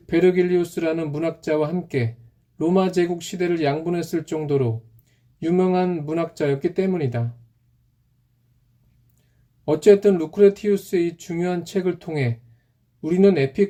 베르길리우스라는 문학자와 함께 로마 제국 시대를 양분했을 정도로 유명한 문학자였기 때문이다. 어쨌든 루크레티우스의 이 중요한 책을 통해 우리는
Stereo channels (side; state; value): both; identical; correlation 1.00